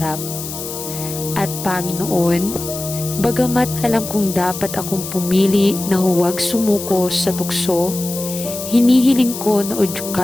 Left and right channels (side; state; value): left; noise; hiss, 8 dB below the sound